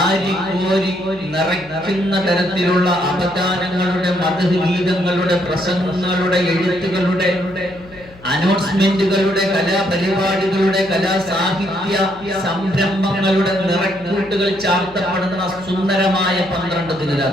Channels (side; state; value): left; noise; hum, 23 dB below the sound